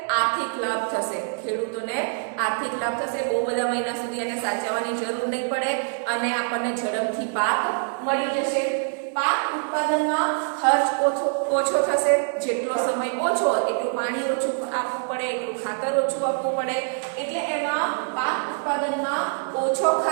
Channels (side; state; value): left; silent; 62 dB below the other